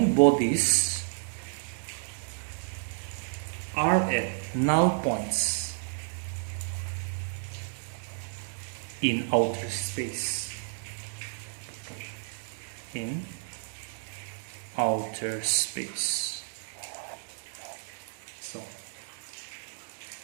bodies are at null points in outer space. In outer space. So,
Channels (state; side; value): silent; left; digital silence